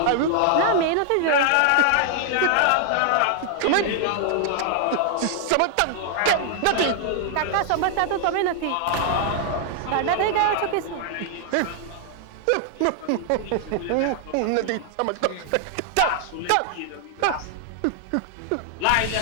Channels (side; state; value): both; different; correlation 0.00